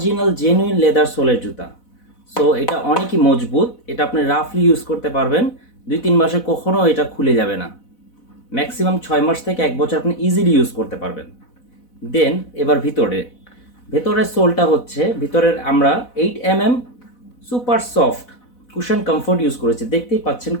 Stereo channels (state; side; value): late; right; 4.0 ms